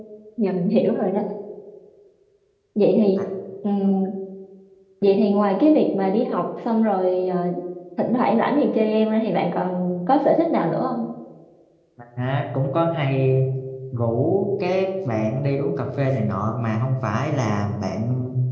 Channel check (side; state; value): both; identical; correlation 1.00